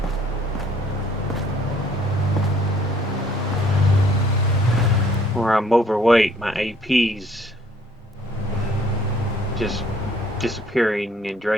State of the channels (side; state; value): both; normal; correlation 0.60